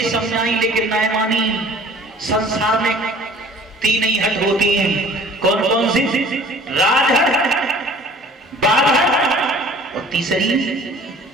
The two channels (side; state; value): both; normal; correlation 0.50